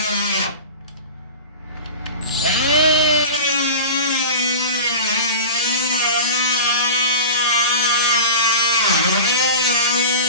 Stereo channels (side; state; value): both; inverted; correlation -0.32